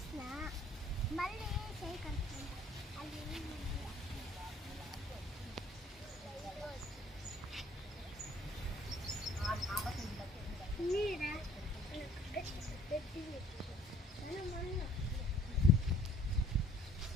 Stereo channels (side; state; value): both; normal; correlation 0.58